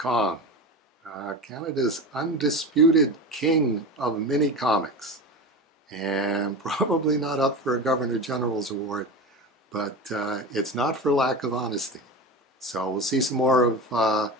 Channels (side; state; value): both; normal; correlation 0.26